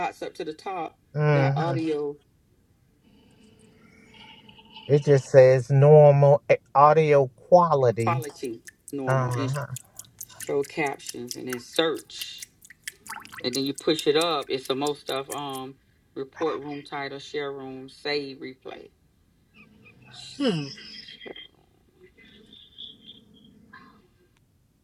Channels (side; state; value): both; identical; correlation 1.00